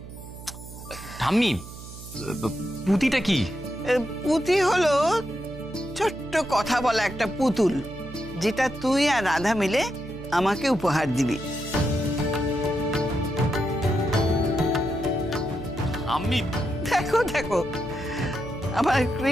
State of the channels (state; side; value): noise; right; hum, 14 dB below the sound